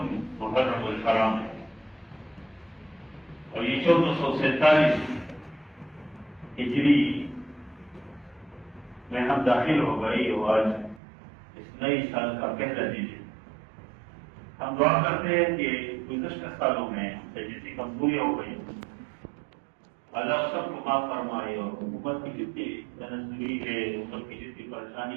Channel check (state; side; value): drops out; left; at 11.0 s